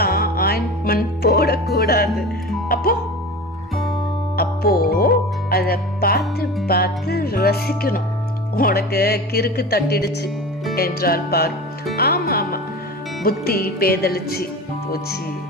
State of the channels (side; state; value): both; normal; correlation 0.32